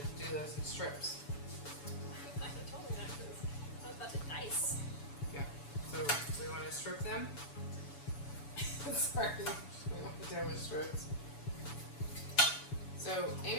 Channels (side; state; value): right; late; 7.0 ms